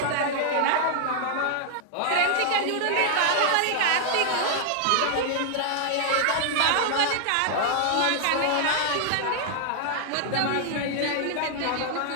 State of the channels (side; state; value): both; different; correlation -0.01